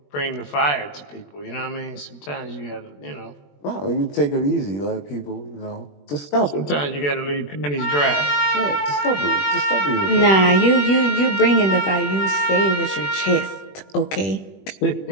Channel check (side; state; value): right; late; 21 ms